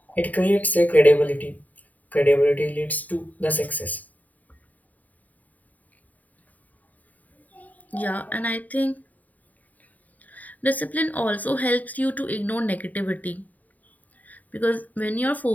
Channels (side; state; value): right; late; 0.076 ms